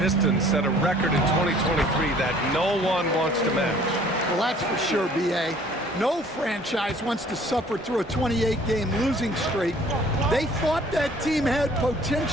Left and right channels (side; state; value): both; normal; correlation 0.54